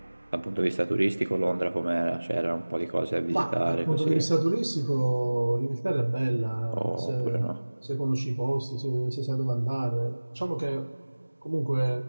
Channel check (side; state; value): both; inverted; correlation -1.00